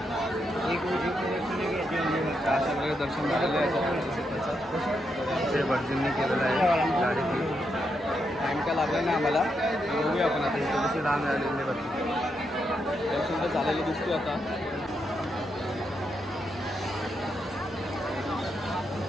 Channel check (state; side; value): normal; both; correlation 0.82